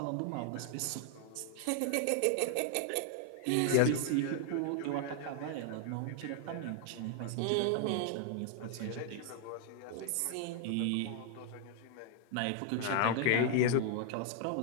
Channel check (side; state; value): both; different; correlation 0.00